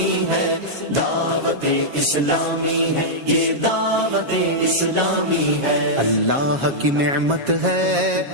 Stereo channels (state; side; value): late; left; 7.4 ms